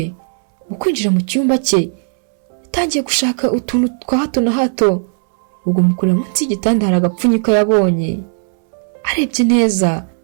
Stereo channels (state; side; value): silent; left; 64 dB below the other